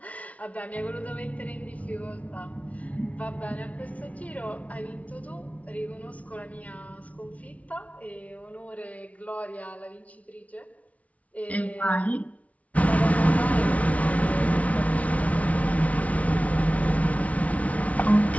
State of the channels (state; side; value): late; right; 0.067 ms